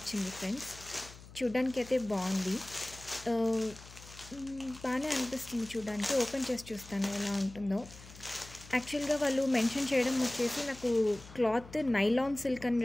ఫ్రెండ్స్. చూడ్డానికి అయితే బాగుంది, బాగానే అనిపిస్తుంది చూడడానికి. ఓపెన్ చేసి చూస్తాను ఎలా ఉంటుందో. యాక్చువల్గా వాళ్ళు మెన్షన్ చేయడం వచ్చేసి నాకు క్లాత్ నైలాన్ సిల్క్ అని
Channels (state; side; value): noise; left; hum, 18 dB below the sound